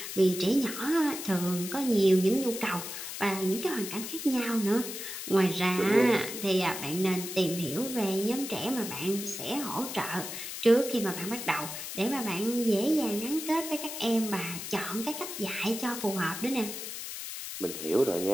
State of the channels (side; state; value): left; noise; hiss, 7 dB below the sound